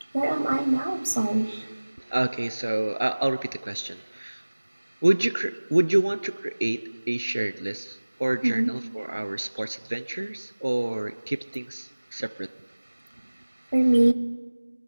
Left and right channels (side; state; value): both; inverted; correlation -1.00